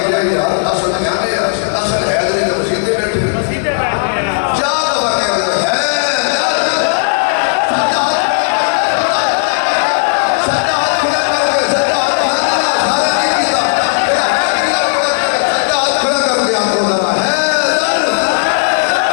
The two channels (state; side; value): silent; right; digital silence